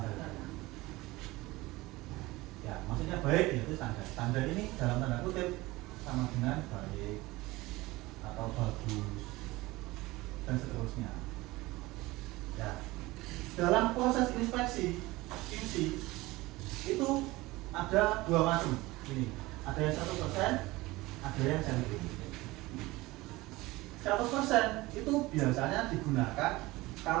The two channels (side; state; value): left; quieter; 20.3 dB